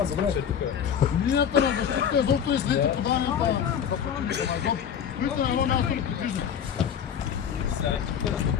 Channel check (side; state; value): right; quieter; 8.3 dB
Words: добре. Линията на защита изобщо е след подаването на... Христо на едно място ли подвижда?